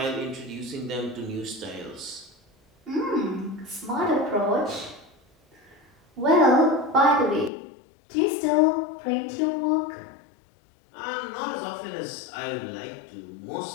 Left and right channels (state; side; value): drops out; right; at 7.5 s